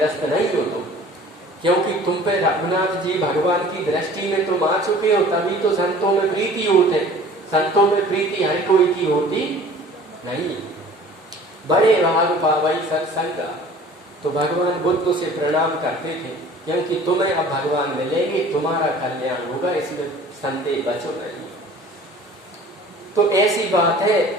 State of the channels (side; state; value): both; normal; correlation 0.47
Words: नहीं हो तुम, क्योंकि तुम पे रघुनाथ जी भगवान की दृष्टि में तुम आ चुके हो, तभी तो संतों में प्रीति होते। संतों में प्रीति हर कोई की होती नहीं। बड़े भाग पावई सत्संग। तो भगवान बुद्ध से प्रणाम करते थे, क्योंकि तुम्हें अब भगवान मिलेंगे, तुम्हारा कल्याण होगा, इसमें संदेह बचो नहीं। तो ऐसी बात है,